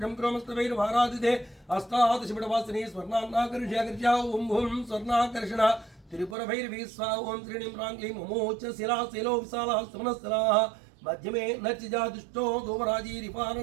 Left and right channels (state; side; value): drops out; left; at 6.4 s